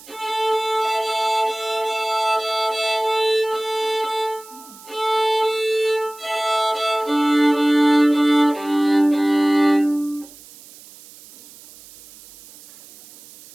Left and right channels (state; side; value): noise; right; hiss, 21 dB below the sound